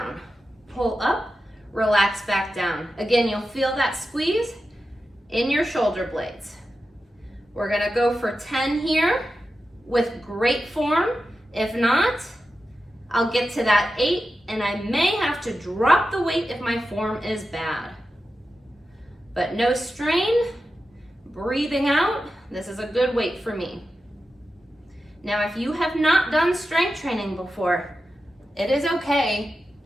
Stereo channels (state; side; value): normal; both; correlation 0.91